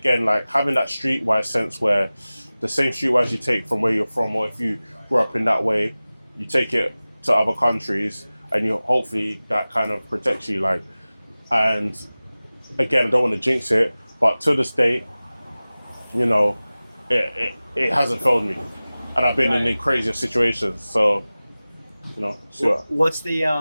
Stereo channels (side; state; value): both; inverted; correlation -0.98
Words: like having that streetwise sense where the same streetwise you take from where you're from, or if you grew up in that way, you take it to other countries, and you hopefully that kind of protects you. Like, and again, I don't want to jinx it, but to this day, you know, it hasn't failed me, and I've been in the craziest situations. So, you know, sure. What's